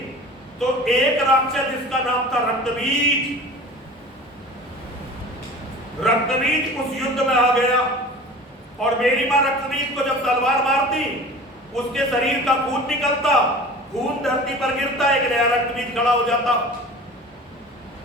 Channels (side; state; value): both; normal; correlation 0.40